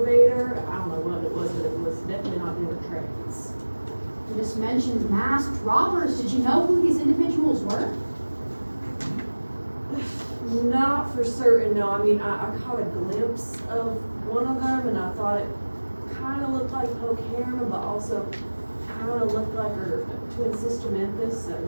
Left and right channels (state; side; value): inverted; both; correlation -1.00